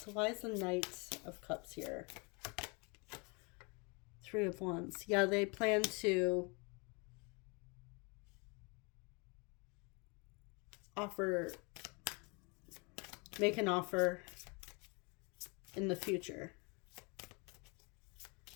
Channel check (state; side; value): quieter; right; 31.1 dB